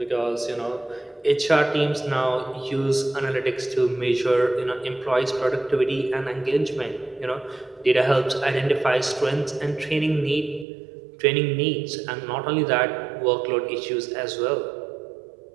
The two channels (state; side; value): drops out; left; at 10.7 s